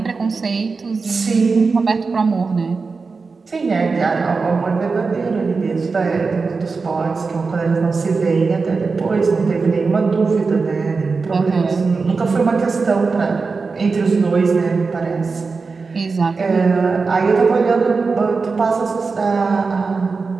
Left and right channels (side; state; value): left; quieter; 4.5 dB